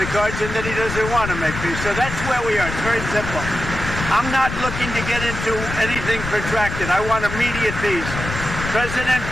cards, and then he doesn't want to make peace. So that's where we are. It's very simple. I'm not looking to get into anything protracted. I want immediate peace. President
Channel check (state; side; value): noise; left; rumble, 7 dB below the sound